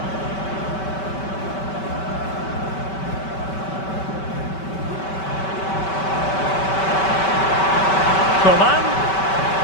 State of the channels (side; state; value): right; late; 5.2 ms